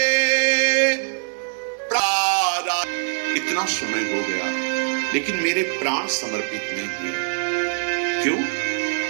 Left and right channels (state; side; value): silent; left; digital silence